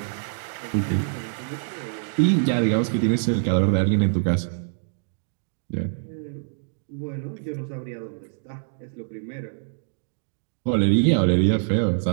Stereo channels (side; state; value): left; silent; digital silence